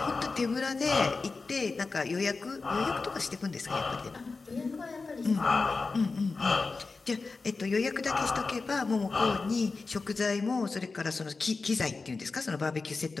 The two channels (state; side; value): quieter; right; 4.1 dB